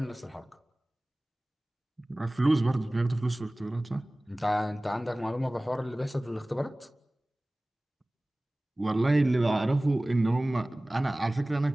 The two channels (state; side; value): normal; both; correlation 0.98